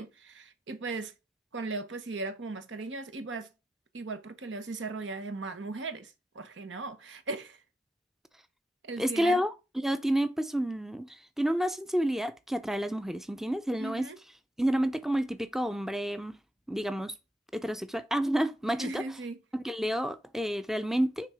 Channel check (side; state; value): both; normal; correlation 0.87